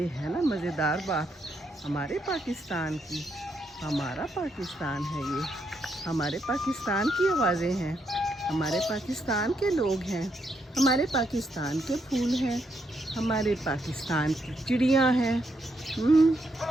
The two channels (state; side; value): normal; both; correlation 0.78